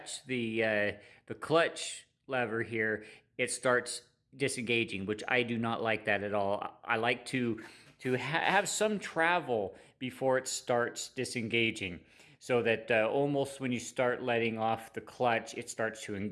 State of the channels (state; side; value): identical; both; correlation 1.00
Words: the clutch lever here, it starts disengaging, which I do not like that at all. I like to have some travel before it starts disengaging, so that almost when you start letting off the clutch, it starts to